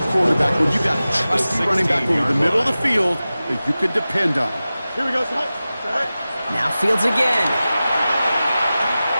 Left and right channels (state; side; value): inverted; both; correlation -0.96